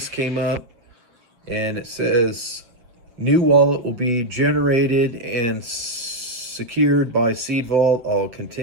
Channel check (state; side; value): late; left; 8.0 ms